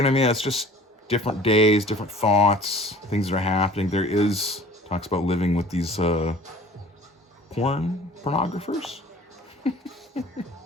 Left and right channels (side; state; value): both; normal; correlation 0.47